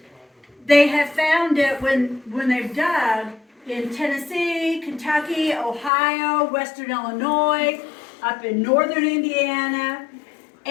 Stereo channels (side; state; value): right; drops out; at 5.9 s